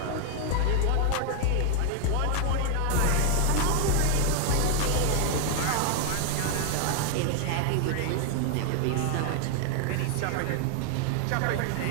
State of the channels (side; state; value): both; different; correlation 0.00